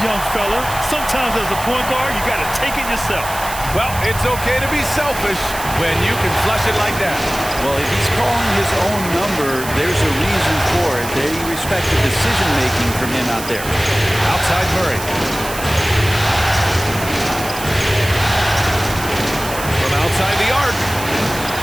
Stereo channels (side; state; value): right; noise; hiss, 10 dB below the sound